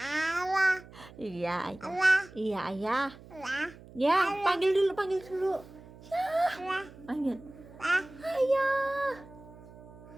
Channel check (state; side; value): noise; right; hum, 20 dB below the sound